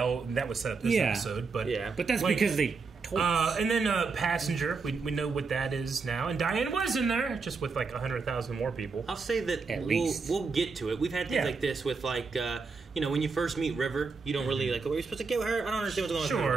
that was set up this episode. But but that's because they told us. And then Passenger, we know what that is now. And Diane was in there, just with like 100,000 more people. I'll say that we'll get to it. We've had things like this with like, when you first meet River, you don't really like, are you supposed to get with her? I don't understand what's going on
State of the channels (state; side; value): quieter; left; 4.6 dB